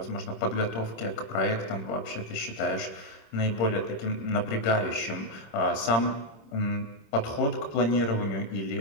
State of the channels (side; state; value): right; late; 26 ms